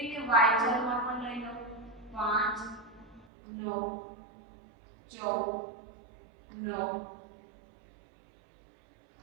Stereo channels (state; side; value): drops out; left; at 3.2 s